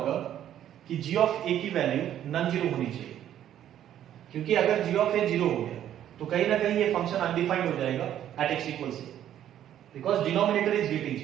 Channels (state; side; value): quieter; left; 11.1 dB